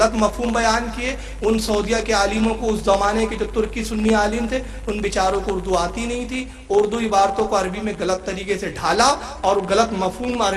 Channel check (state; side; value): identical; both; correlation 1.00